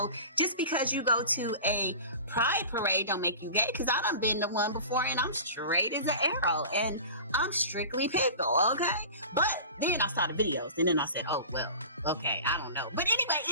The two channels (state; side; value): inverted; both; correlation -0.37